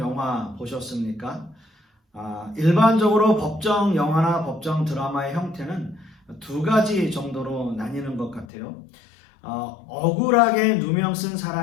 보셨습니까? 일반적으로 법정 영화나 법정 드라마의 형태는 두 가지 정도로 나뉘는 것 같아요. 억울하게 누명 쓴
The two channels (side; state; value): right; drops out; at 8.5 s